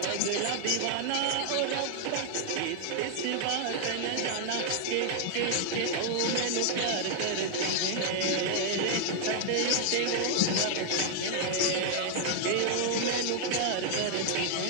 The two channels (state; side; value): different; both; correlation -0.01